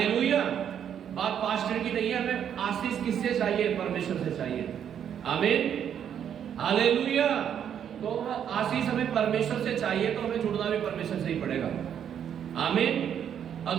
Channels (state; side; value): quieter; left; 8.9 dB